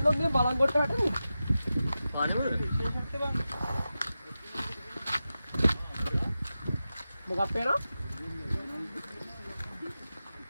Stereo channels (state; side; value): inverted; both; correlation -0.92